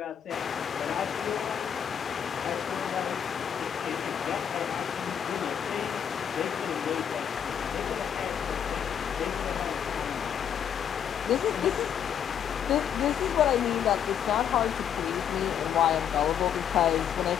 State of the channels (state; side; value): quieter; right; 8.7 dB